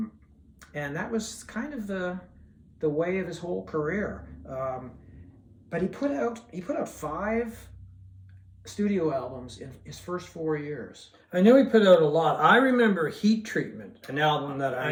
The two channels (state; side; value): identical; both; correlation 1.00